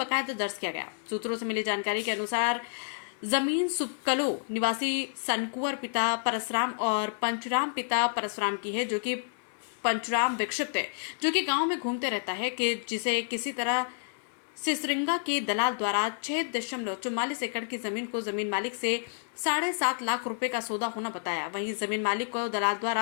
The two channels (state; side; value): silent; right; digital silence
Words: दर्ज किया गया। सूत्रों से मिली जानकारी के अनुसार जमीन सुबकलो निवासी सनकुवर पिता परसराम और पंचराम पिता परसराम की है, जो कि पंचराम विक्षिप्त है, जो कि गांव में घूमते रहता है कि जिसे किसी तरह सिसरिंगा के दलाल द्वारा 6.44 एकड़ की जमीन को जमीन मालिक से 7.5 लाख रुपए का सौदा होना बताया। वहीं जमीन मालिक को दलाल